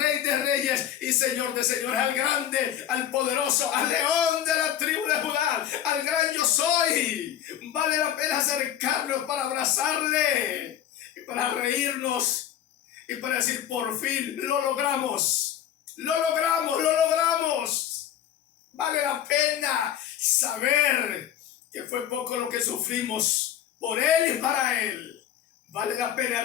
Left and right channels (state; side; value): quieter; right; 10.7 dB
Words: Rey de Reyes y Señor de Señores, al grande, al poderoso, al león de la tribu de Judá, al gran yo soy. Vale la pena acercarnos para abrazarle y para reírnos. Y para decir: por fin lo logramos, lo logramos, lo logramos. Vale la pena saber que fue poco lo que sufrimos por Él y para Él. Vale la pena